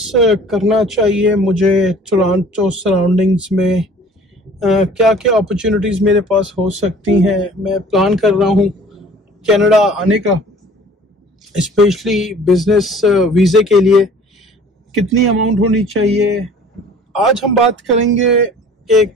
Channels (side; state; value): both; normal; correlation 0.49